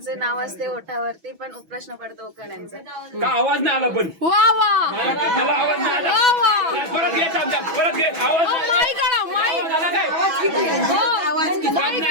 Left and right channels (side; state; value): left; late; 6.1 ms